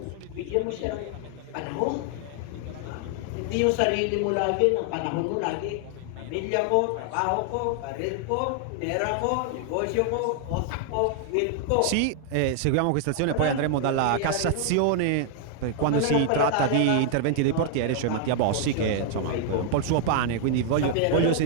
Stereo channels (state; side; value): different; both; correlation 0.00